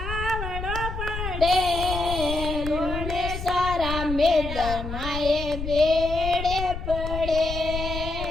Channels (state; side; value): noise; left; rumble, 6 dB below the sound